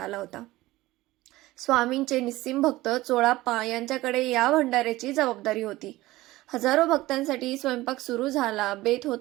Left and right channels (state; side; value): quieter; left; 17.9 dB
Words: होता. स्वामींचे निस्सीम भक्त चोळाप्पा यांच्याकडे या भंडाऱ्याची जबाबदारी होती. हजारो भक्तांसाठी स्वयंपाक सुरू झाला. बेत